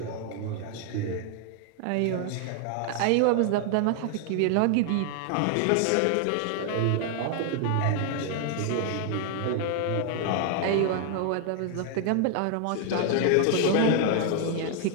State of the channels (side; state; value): both; different; correlation 0.00